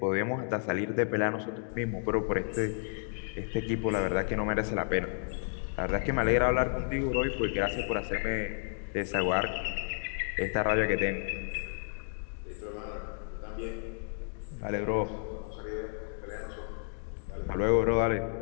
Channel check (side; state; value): right; silent; 57 dB below the other